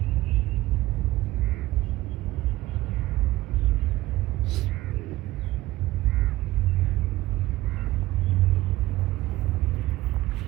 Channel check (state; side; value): quieter; left; 17.1 dB